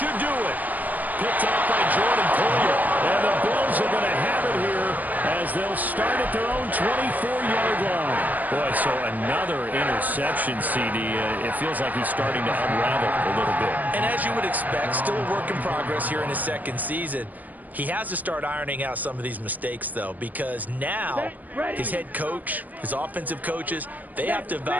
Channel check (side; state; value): left; late; 0.081 ms